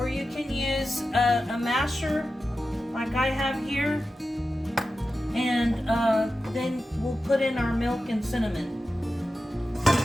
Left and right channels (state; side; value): normal; both; correlation 0.93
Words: you can use a masher like I have here. And then we'll put in our milk and cinnamon.